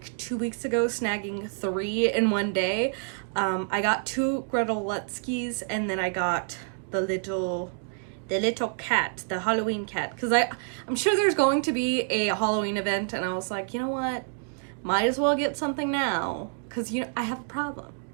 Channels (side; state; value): left; silent; 60 dB below the other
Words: 2 weeks ago snagging 3 in one day. I got 2 Gretelutskis, and then I got the little cat, the Halloween cat, because I'm sure there's going to be a Halloween event, and I was like, you know what, might as well get something now, because I have a problem.